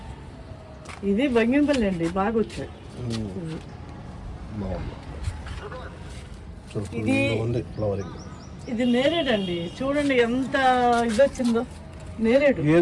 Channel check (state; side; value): identical; both; correlation 1.00